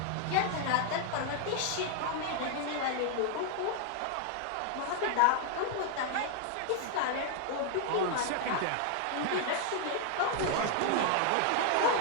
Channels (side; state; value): both; different; correlation 0.00